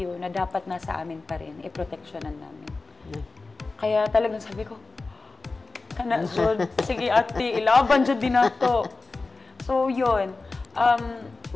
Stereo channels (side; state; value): right; quieter; 3.7 dB